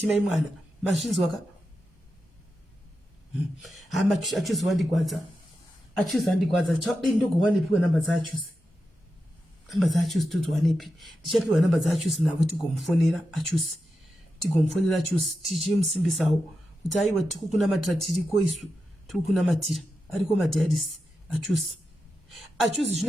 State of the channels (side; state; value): both; normal; correlation 0.89